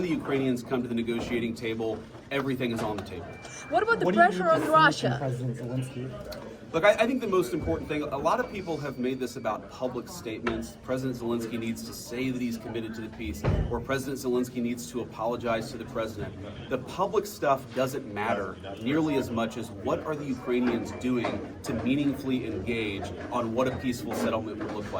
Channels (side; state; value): both; identical; correlation 1.00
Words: the Ukrainians come to the negotiating table, everything is on the table. What about the pressure on Russia? President Zelensky? Look, I think the most important thing, a lot of people have made this about public statements. President Zelensky needs to say that he's committed to the peace, or President Zelensky needs to apologize to the president. The public stuff doesn't matter nearly as much as what are the Ukrainians doing to meaningfully engage on what a peaceful settlement would look